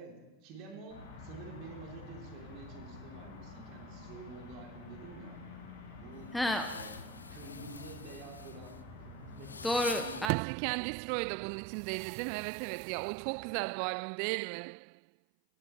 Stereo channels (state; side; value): drops out; left; at 10.2 s